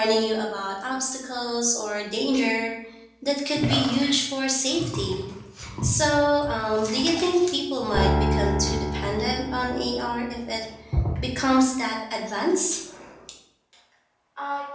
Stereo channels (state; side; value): identical; both; correlation 1.00